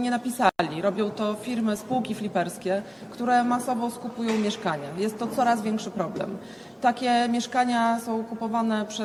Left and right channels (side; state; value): both; identical; correlation 1.00